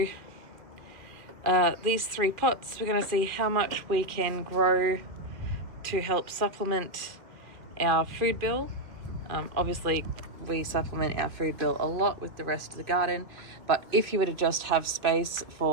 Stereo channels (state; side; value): late; left; 2.4 ms